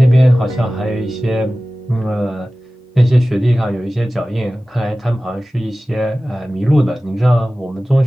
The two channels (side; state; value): both; normal; correlation 0.96